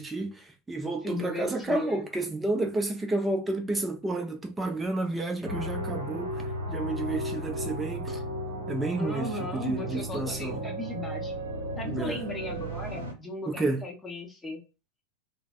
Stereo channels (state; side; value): normal; both; correlation 0.53